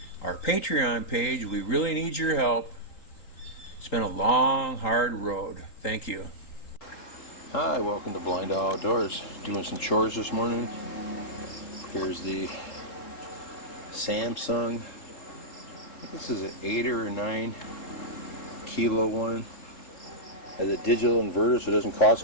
our Patreon page? We really need your help. It's been a long, hard road. Thank you. Hi, welcome to BlindOwl Outdoors. Doing some chores this morning. Here's the Samsung. This is an 8 or 9 kilo one. Has a digital inverter, so it doesn't cost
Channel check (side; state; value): right; late; 3.8 ms